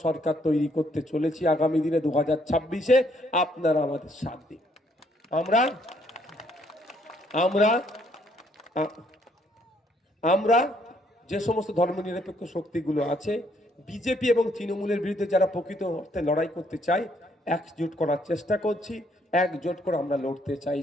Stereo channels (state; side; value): normal; both; correlation 0.68